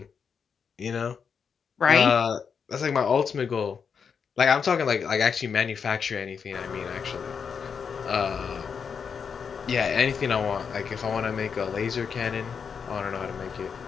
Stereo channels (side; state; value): right; quieter; 6.4 dB